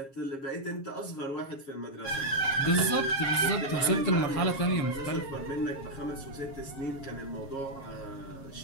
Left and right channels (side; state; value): right; late; 7.4 ms